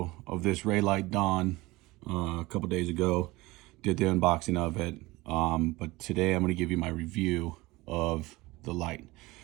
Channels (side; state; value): left; quieter; 20.9 dB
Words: of this Reylight Dawn a couple days ago. Did the unboxing of it, but today I'm going to give you my review of the light.